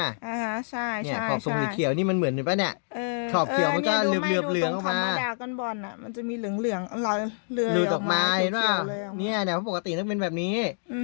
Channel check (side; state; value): right; silent; digital silence